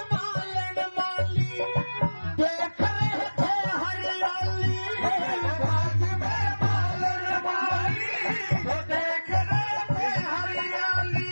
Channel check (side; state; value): both; inverted; correlation -1.00